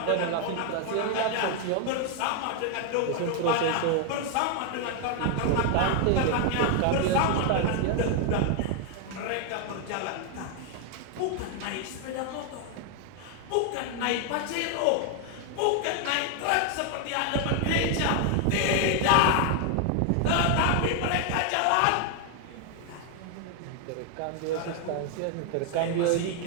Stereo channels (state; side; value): different; both; correlation 0.01